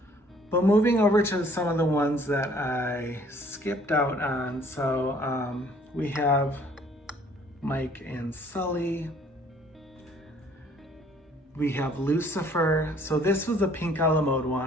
But moving over to some of the ones that I skipped out on. So we have Mike and Sully. We have Lucifer. So this was the pink a la mode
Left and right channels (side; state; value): both; normal; correlation 0.58